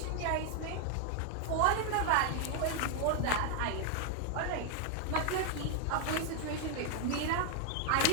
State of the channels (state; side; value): different; both; correlation 0.00